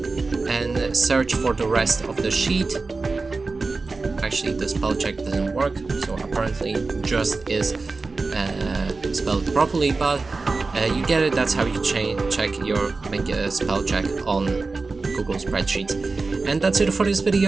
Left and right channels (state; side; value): quieter; left; 3.9 dB